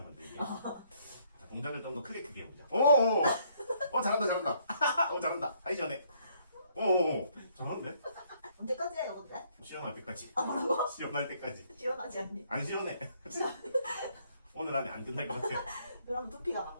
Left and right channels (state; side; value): inverted; both; correlation -0.67